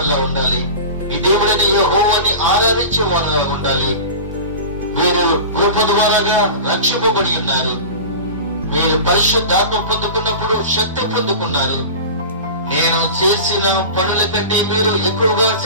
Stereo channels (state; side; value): inverted; both; correlation -0.32